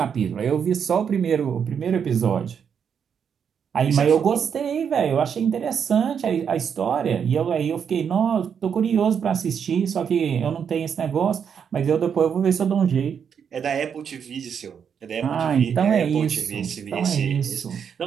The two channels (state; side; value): quieter; left; 7.4 dB